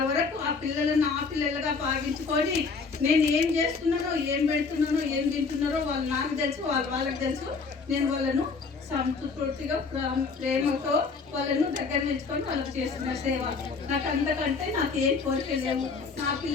వరకు ఆ పిల్లలను నా పిల్లలుగా భావించుకొని నేను ఏం చేస్తున్నానో, ఏం పెడుతున్నానో, ఏం తింటున్నారో వాళ్ళు నాకు తెలుసు, వాళ్ళకి తెలుసు. నేను వాళ్ళను సంతృప్తిగా ప్రేమతో వాళ్ళను దగ్గర నిలుచుకొని వాళ్ళకి చేస్తున్న సేవ. నాకు అంతకంటే నాకు ఏం కోరిక లేవు. నా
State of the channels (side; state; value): right; quieter; 4.7 dB